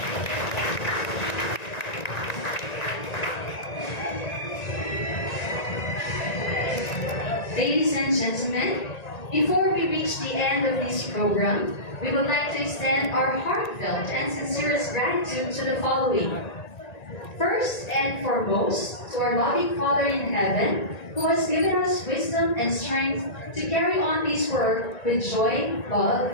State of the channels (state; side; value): late; right; 1.9 ms